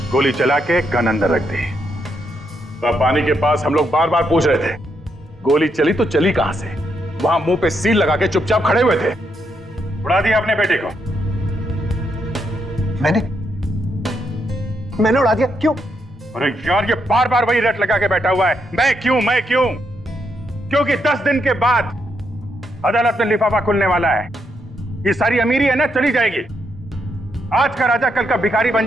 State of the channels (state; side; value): normal; both; correlation 0.79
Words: गोली चला के गन अंदर रख दी। पानी के पास हम लोग बार बार पूछ रहे थे, गोली चली तो चली कहां से? वहां मुंह पे सील लगा के चुपचाप खड़े हुए थे। उड़ा दिया अपने बेटे को। मैंने उड़ा दिया? क्यों? अरे यार, ये बार बार वही रट लगा के बैठा हुआ है, मैं क्यों मैं क्यों? क्योंकि 10 दिन के बाद अदालत में लिफाफा खुलने वाला है। ये सारी अमीरी है ना, चली जाएगी। आज का राजा कल का भिखारी बन